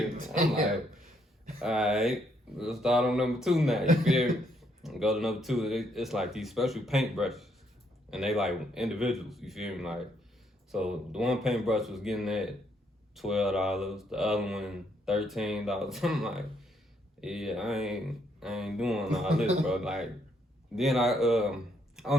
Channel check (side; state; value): both; normal; correlation 0.73